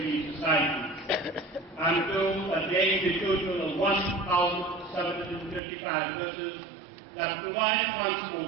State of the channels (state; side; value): drops out; left; at 5.6 s